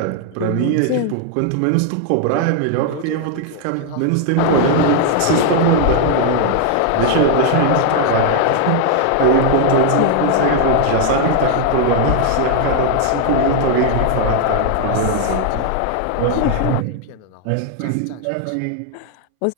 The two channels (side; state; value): both; different; correlation 0.00